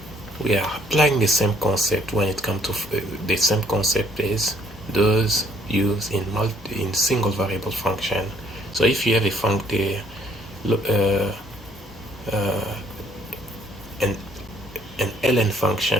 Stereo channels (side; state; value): both; normal; correlation 0.64